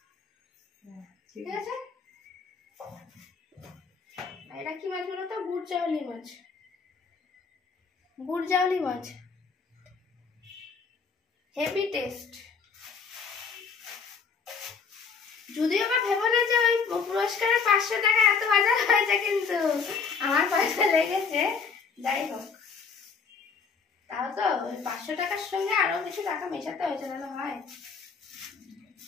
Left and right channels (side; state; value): right; quieter; 5.6 dB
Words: ঠিক আছে। এটা কি মাছ বলো তো? বুটজাউলি মাছ। বুটজাউলি মাছ, হেভি টেস্ট। যদিও বা ভেবো না যে ওই পুরস্কারের 500 টাকা এত বাজার হয়েছে, কিন্তু আমার পয়সা লেগেছে। যাই হোক, তাও তো ওই 500 টাকার সঙ্গে আরো কিছু টাকা মেশাতে হয়েছে, তাহলে হয়।